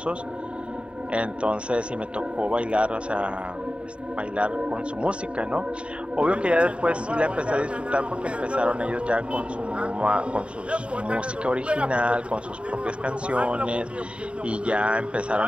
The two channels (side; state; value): left; late; 0.058 ms